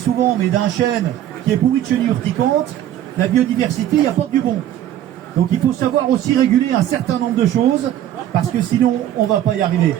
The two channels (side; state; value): left; quieter; 11.8 dB